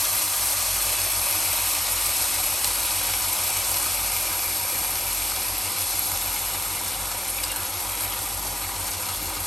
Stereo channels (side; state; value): both; normal; correlation 0.84